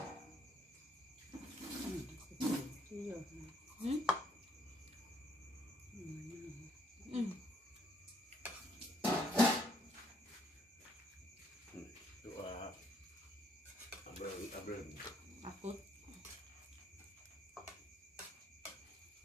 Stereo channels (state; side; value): normal; both; correlation 0.69